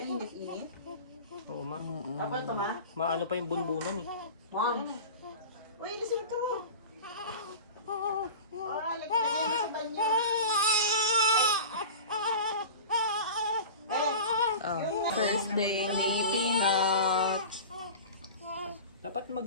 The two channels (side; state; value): both; inverted; correlation -0.34